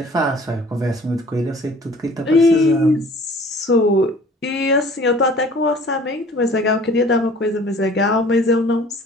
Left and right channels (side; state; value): both; normal; correlation 0.50